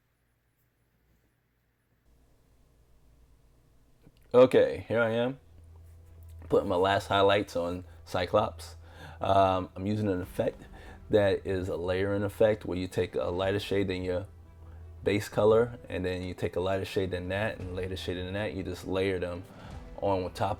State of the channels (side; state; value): both; identical; correlation 1.00